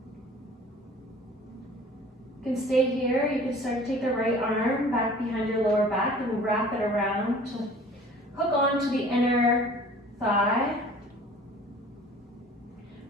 You can stay here. You can start to take the right arm back behind your lower back and wrap it around to hook on to the inner thigh.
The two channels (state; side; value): normal; both; correlation 0.48